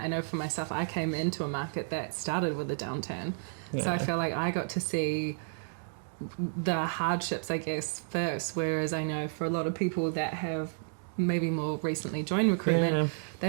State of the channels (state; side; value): silent; left; digital silence